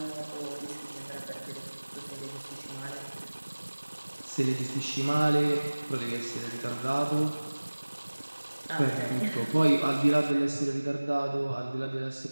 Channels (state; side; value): inverted; both; correlation -1.00